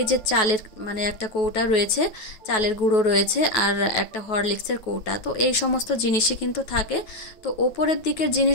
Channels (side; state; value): right; late; 9.3 ms